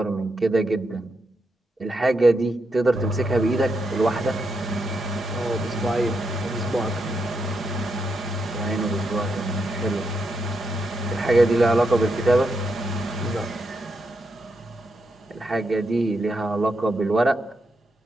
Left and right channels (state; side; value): normal; both; correlation 0.82